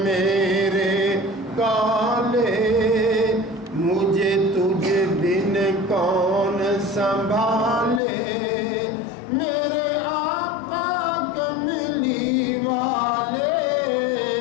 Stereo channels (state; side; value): drops out; right; at 8.0 s